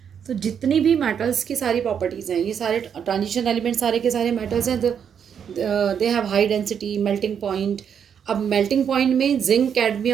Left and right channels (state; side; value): quieter; left; 7.8 dB